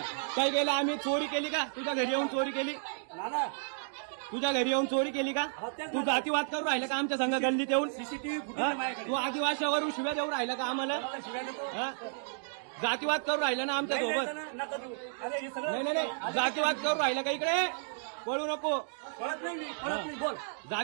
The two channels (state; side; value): silent; left; digital silence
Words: काय केलं आम्ही? चोरी केली का? तुझ्या घरी येऊन चोरी केली? नाना, तुझ्या घरी येऊन चोरी केली का? तू जातीवाद करून राहिला का आमच्या संघ गल्लीत येऊन? सीसीटीव्ही फुटेज तू आदिवासीवरून शिव्या देऊन राहिला का आम्हाला? जातीवाद करून राहिला ना आमच्या सोबत? नका देऊ. अरे हे सगळं नाही नाही, जातीवाद करून राहिला का? इकडे बोलू नको. कळत नाही. मी कळत नाही. बोल.